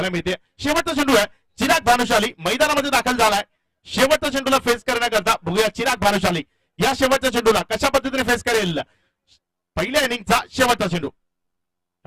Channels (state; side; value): identical; both; correlation 1.00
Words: मिळते. शेवटचा चेंडू आहे, चिराग भानुशाली मैदानामध्ये दाखल झालाय. शेवटच्या चेंडूला फेस करण्याकरता बघूया चिराग भानुशाली या शेवटच्या चेंडूला कशा पद्धतीने फेस करेल. पहिल्या इनिंगचा शेवटचा चेंडू